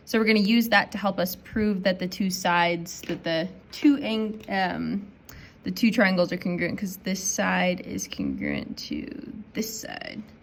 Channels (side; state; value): both; identical; correlation 1.00